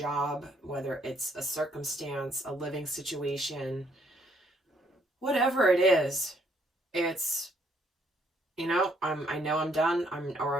whether it's a circumstance, a living situation, whatever it is, it's, I know I'm done, I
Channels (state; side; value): normal; both; correlation 0.68